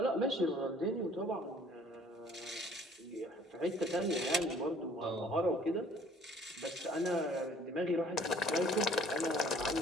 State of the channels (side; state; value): both; normal; correlation 0.56